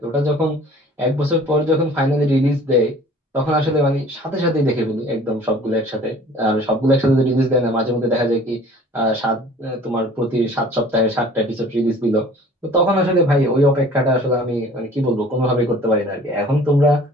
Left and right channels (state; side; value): normal; both; correlation 0.49